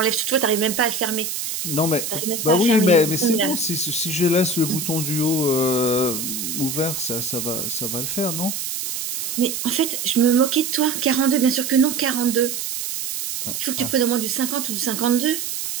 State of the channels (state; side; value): noise; right; hiss, 4 dB below the sound